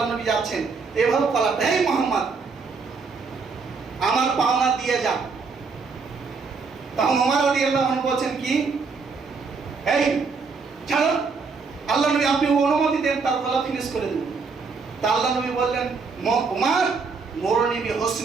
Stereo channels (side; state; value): left; quieter; 4.8 dB